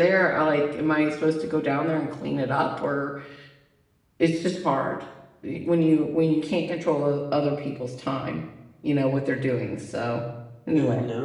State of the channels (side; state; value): both; identical; correlation 1.00